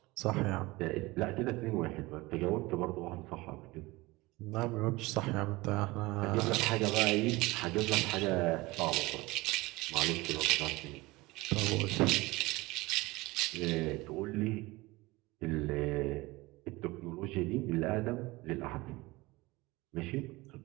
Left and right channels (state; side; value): quieter; left; 21.6 dB